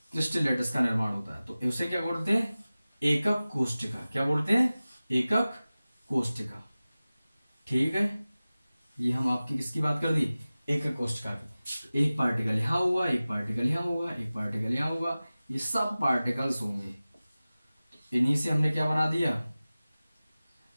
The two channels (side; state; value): both; inverted; correlation -0.97